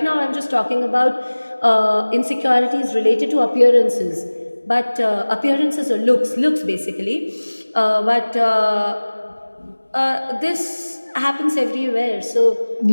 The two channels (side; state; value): both; inverted; correlation -1.00